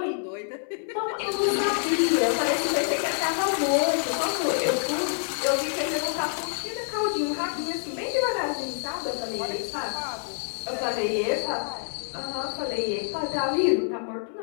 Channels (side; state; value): right; silent; digital silence